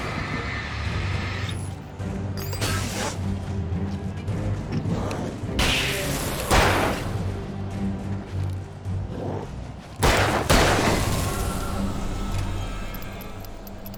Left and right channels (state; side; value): identical; both; correlation 1.00